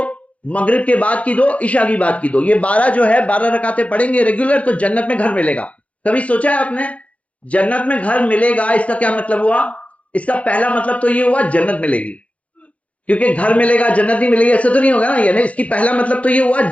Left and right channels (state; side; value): late; right; 0.064 ms